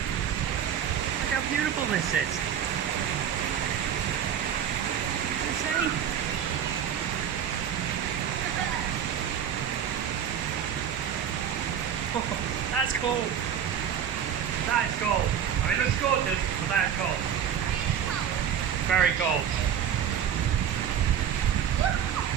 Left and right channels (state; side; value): quieter; left; 8.8 dB